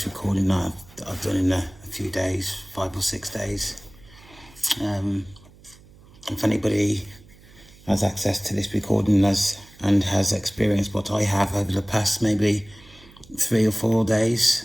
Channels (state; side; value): noise; right; hum, 24 dB below the sound